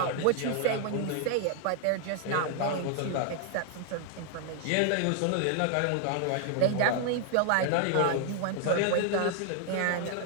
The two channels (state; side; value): different; both; correlation 0.00